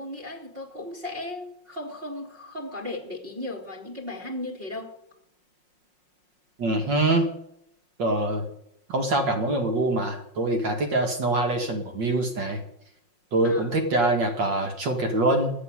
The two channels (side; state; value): left; late; 5.5 ms